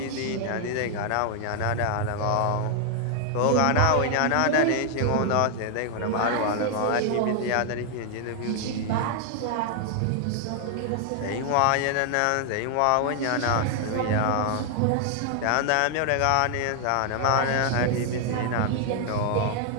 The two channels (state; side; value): different; both; correlation 0.00